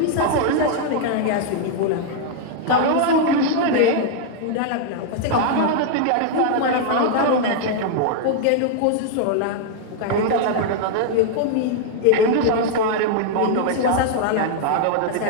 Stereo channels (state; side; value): different; both; correlation -0.01